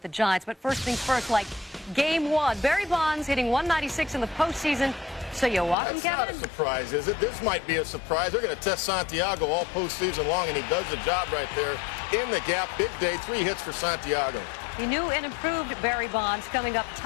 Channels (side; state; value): right; drops out; at 5.8 s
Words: the Giants. But first things first, like Game 1. Barry Bonds hitting 196 in the postseason. So you walk him, Kevin? That's not a surprise, is it? This might be a surprise. They're going to test Santiago all postseason long, and he does the job right there in the gap. Big day, 3 hits for Santiago. He knew and improved Barry Bonds coming up